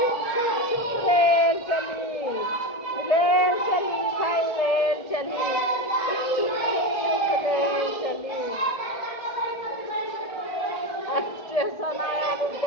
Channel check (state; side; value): late; right; 1.7 ms